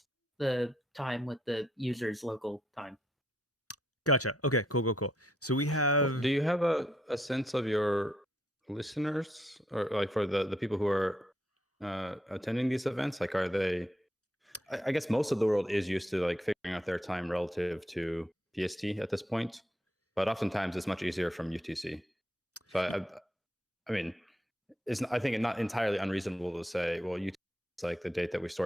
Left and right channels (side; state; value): both; normal; correlation 0.76